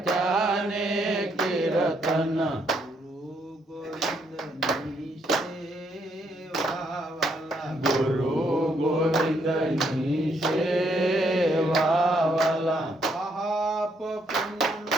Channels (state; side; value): normal; both; correlation 0.73